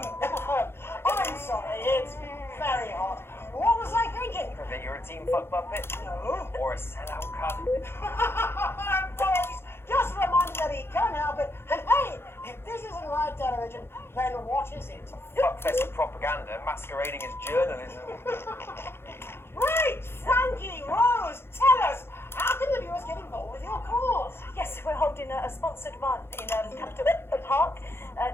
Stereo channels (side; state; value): right; late; 0.11 ms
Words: sorry, it's very hot. What was I thinking? That you're a team fuck puppet? No. Or a sellout cunt? Boys, just reminded that he can't help it. And hey, if this isn't live television, then what is it? Fuckfest of propaganda masquerading as journalism. Right, Frankie, Rose, tell us, how can the viewers get involved with your cause? Yes, we're holding a sponsored run in Capital Park